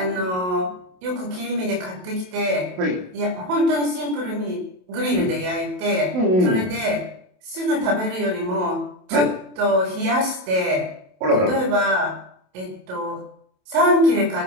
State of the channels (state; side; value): late; left; 27 ms